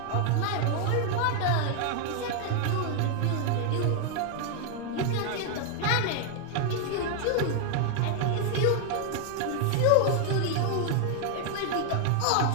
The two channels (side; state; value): both; different; correlation 0.00